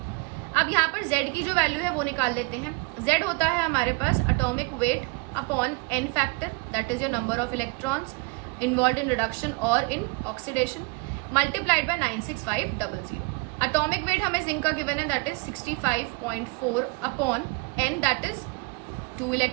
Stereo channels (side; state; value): left; quieter; 29.5 dB